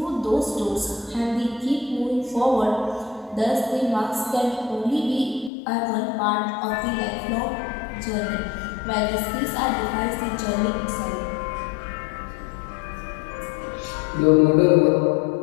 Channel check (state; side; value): drops out; right; at 5.5 s